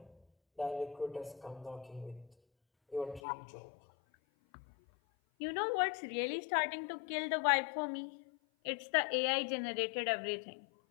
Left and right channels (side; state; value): right; drops out; at 3.2 s